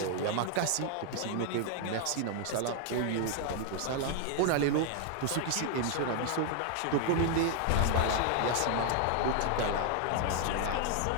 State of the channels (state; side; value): different; both; correlation 0.00